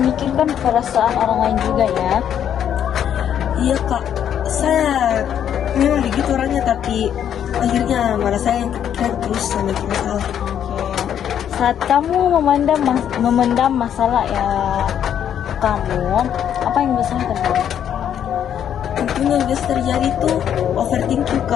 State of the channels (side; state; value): right; quieter; 9.4 dB